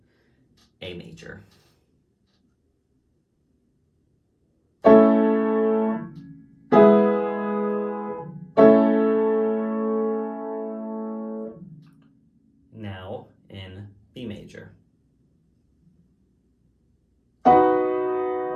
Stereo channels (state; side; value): identical; both; correlation 1.00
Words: A major. Now in B major.